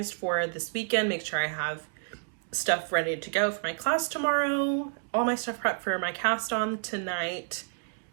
for this weekend, make sure I have stuff ready to go for my class tomorrow, all my stuff prepped for my cast on tonight,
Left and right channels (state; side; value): silent; left; digital silence